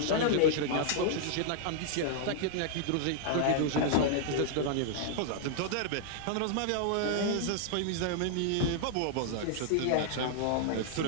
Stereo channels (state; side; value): different; both; correlation -0.01